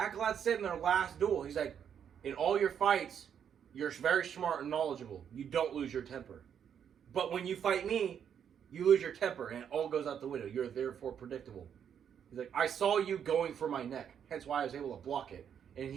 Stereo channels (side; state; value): left; quieter; 8.3 dB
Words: said in their last duel, he's like, in all your fights, you're very smart and knowledgeable. You don't lose your temper. But when you fight me, you lose your temper and it all goes out the window. You're therefore predictable. He's like, I saw you going for my neck. Hence why I was able to block it. And